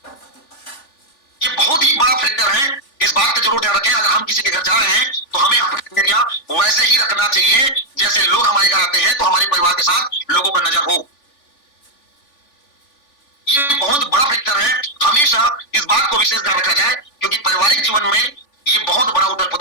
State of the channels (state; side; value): late; right; 3.5 ms